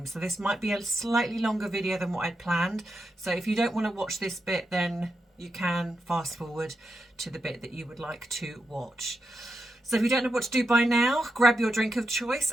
So this might be a slightly longer video than what I'd planned. So if you don't want to watch this bit, then you can fast forward to the bit that you would like to watch. So if you don't know what to do by now, grab your drink of choice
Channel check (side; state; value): both; normal; correlation 0.86